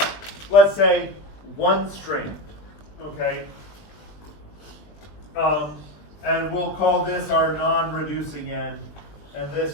let's say, one strand, okay? And we'll call this our non-reducing end, and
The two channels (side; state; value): right; late; 20 ms